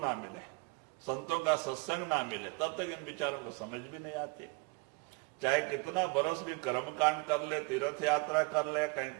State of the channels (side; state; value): left; quieter; 28.4 dB